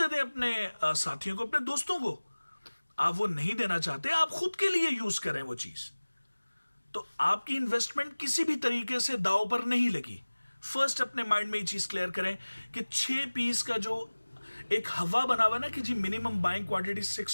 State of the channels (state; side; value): inverted; both; correlation -1.00